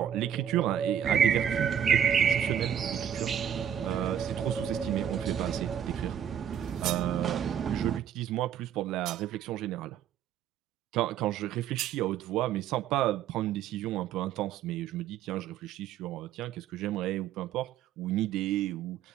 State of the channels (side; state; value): left; quieter; 9.4 dB